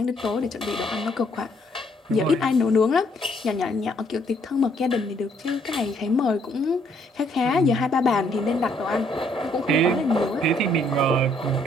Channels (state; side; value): normal; both; correlation 0.68